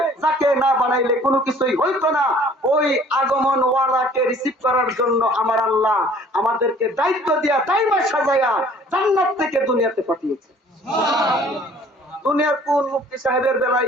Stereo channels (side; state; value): both; normal; correlation 0.53